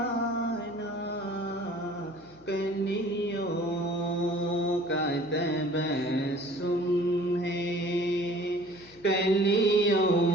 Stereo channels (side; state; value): left; noise; hum, 27 dB below the sound